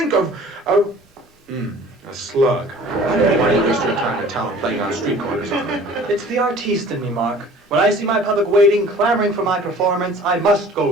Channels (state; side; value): normal; both; correlation 0.47